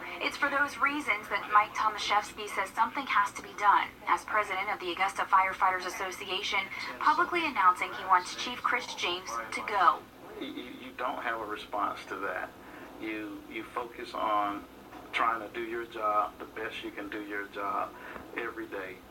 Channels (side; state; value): both; identical; correlation 1.00